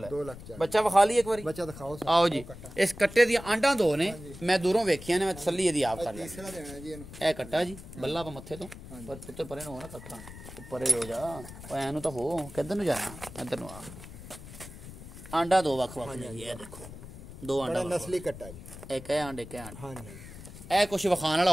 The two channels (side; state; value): left; noise; rumble, 14 dB below the sound